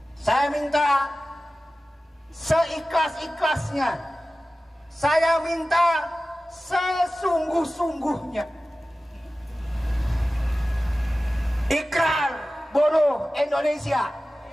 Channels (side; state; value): both; normal; correlation 0.96